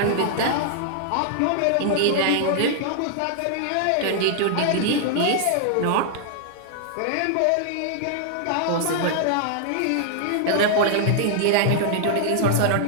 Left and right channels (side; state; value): both; different; correlation -0.01